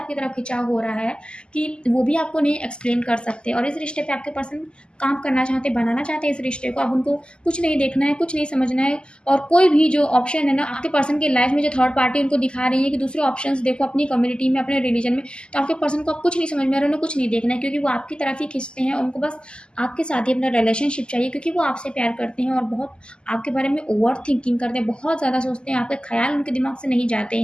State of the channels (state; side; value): late; right; 0.049 ms